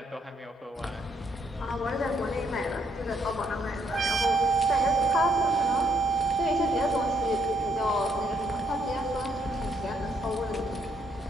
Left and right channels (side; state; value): both; normal; correlation 0.72